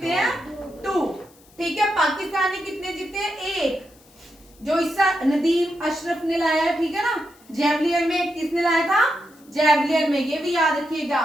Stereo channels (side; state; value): left; noise; hiss, 28 dB below the sound